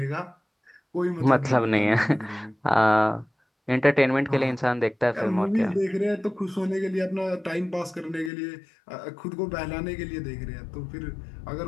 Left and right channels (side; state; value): right; drops out; at 8.3 s